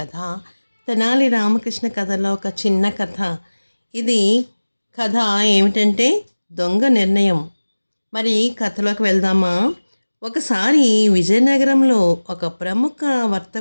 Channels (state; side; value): inverted; both; correlation -1.00